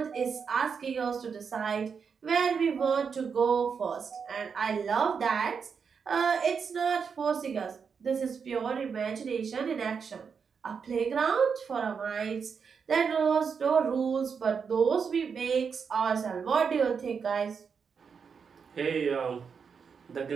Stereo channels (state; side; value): quieter; left; 6.1 dB